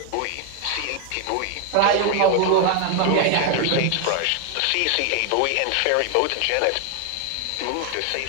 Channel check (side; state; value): both; different; correlation 0.01